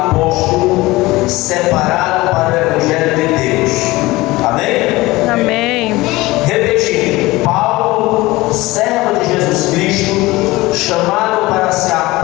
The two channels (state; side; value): quieter; right; 20.0 dB